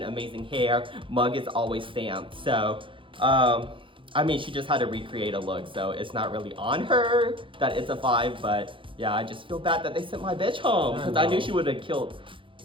amazing hair. Mug is always stamped. So, I mean, she just had to recreate a look, so it's not really on her that it's a 5, but yeah, I just feel bad that they sent my bitch home, because I knew she would have killed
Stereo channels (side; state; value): left; late; 0.25 ms